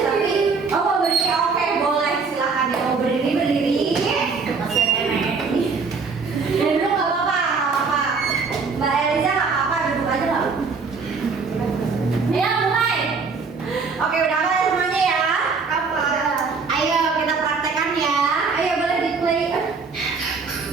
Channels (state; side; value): quieter; left; 4.8 dB